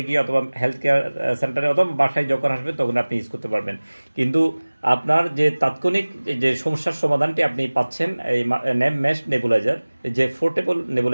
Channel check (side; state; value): both; inverted; correlation -1.00